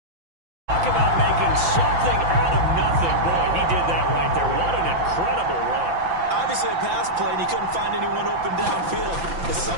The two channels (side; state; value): left; late; 5.9 ms